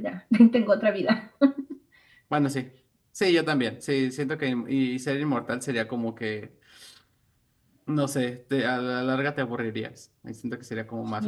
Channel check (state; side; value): identical; both; correlation 1.00